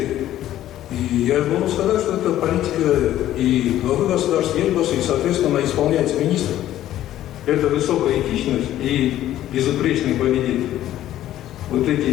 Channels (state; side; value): quieter; right; 13.0 dB